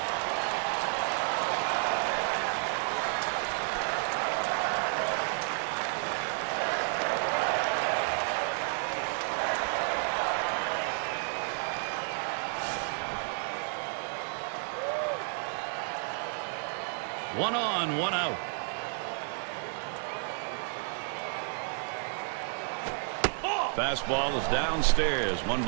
One on, one out. Fastball is downstairs. 1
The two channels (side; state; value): left; silent; 55 dB below the other